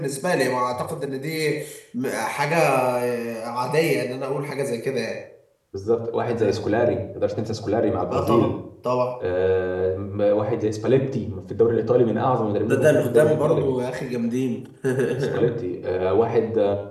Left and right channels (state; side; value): identical; both; correlation 1.00